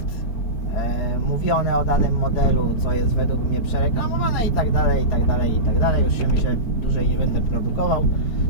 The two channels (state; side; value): late; right; 4.3 ms